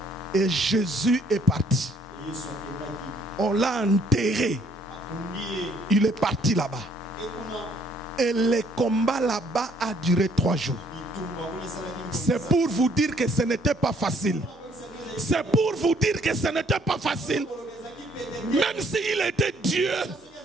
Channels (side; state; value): both; normal; correlation 0.63